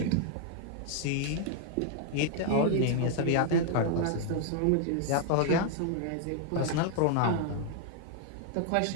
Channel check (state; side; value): different; both; correlation 0.00